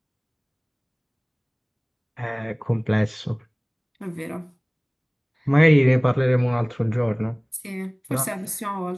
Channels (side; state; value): both; identical; correlation 1.00